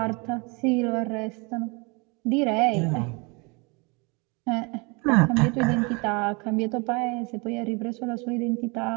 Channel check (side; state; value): left; quieter; 29.4 dB